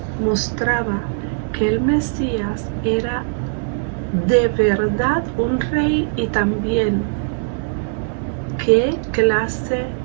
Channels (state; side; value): silent; left; digital silence